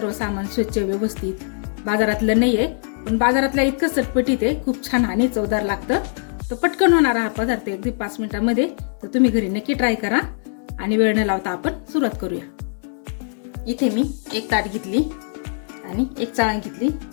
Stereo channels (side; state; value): right; silent; digital silence